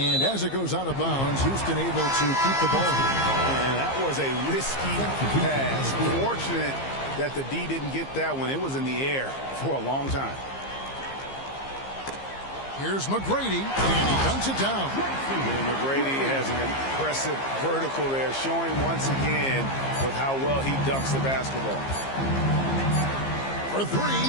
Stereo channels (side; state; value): right; late; 15 ms